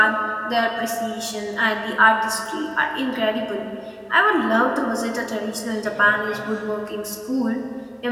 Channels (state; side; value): identical; both; correlation 1.00